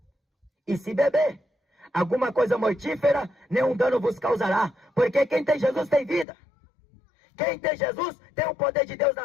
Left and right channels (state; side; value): drops out; right; at 6.2 s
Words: E se beber alguma coisa mortífera, nenhum dano vos causará, porque quem tem Jesus tem vida. Quem tem Jesus tem o poder de Deus